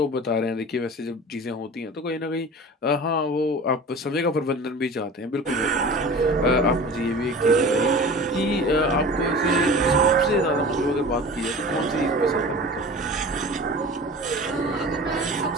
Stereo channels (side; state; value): both; normal; correlation 0.38